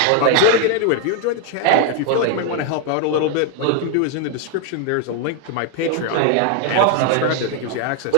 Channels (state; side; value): different; both; correlation 0.00